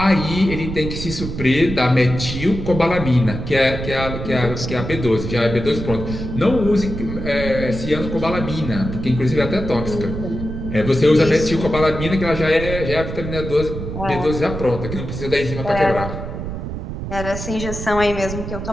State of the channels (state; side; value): noise; right; rumble, 6 dB below the sound